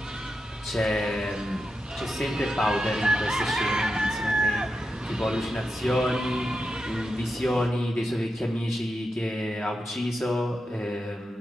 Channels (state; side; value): normal; both; correlation 0.88